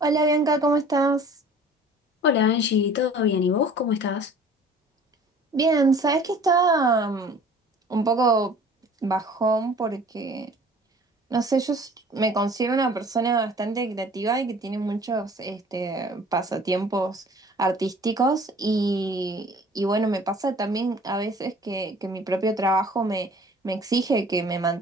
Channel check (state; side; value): normal; both; correlation 0.49